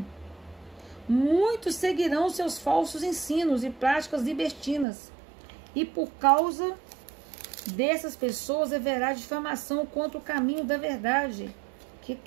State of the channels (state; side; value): drops out; left; at 4.9 s